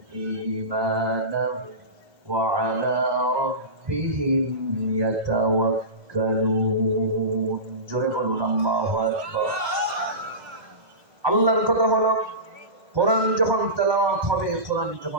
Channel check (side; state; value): left; late; 1.6 ms